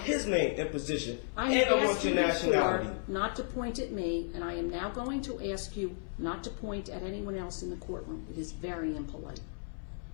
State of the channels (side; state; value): right; silent; 55 dB below the other